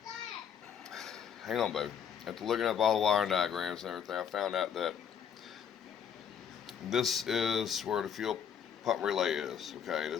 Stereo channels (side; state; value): right; quieter; 8.0 dB